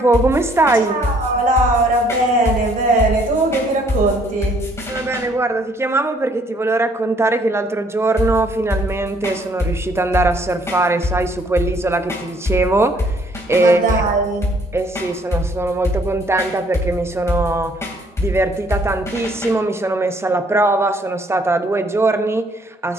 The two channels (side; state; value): both; normal; correlation 0.63